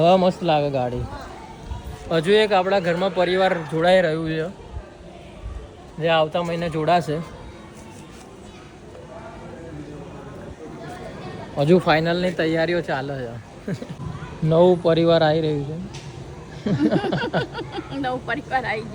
મસ્ત લાગે ગાડી. હજુ એક આપણા ઘરમાં પરિવાર જોડાઈ રહ્યું છે, જે આવતા મહિને જોડાશે. હજુ ફાઇનલની તૈયારીઓ ચાલે છે. નવું પરિવાર આવી રહ્યું છે. નવું પરિવાર આવી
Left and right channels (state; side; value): identical; both; correlation 1.00